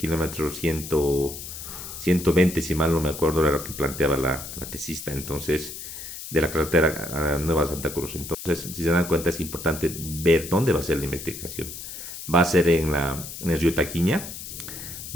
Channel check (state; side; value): noise; left; hiss, 10 dB below the sound